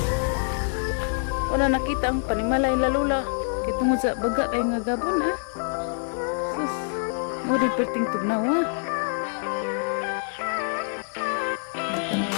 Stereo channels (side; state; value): right; silent; digital silence